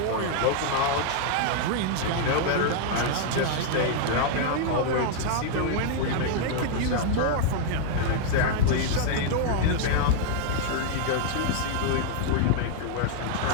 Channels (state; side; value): different; both; correlation 0.00